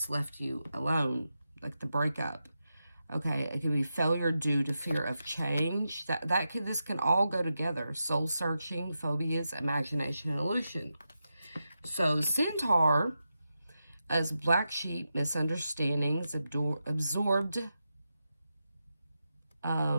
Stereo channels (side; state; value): both; inverted; correlation -0.89